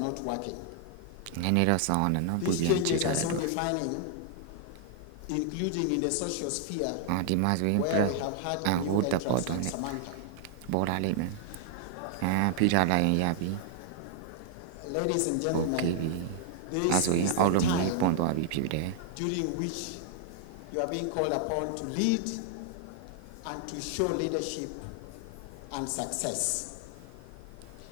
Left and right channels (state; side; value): different; both; correlation -0.01